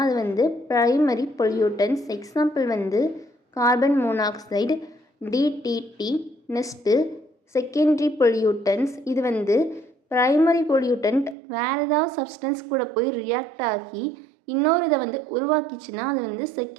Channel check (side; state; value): left; drops out; at 11.4 s